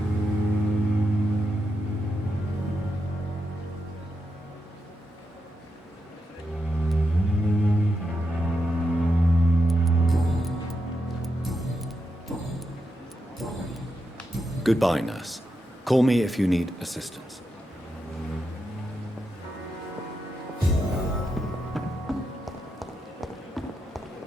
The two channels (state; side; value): normal; both; correlation 0.85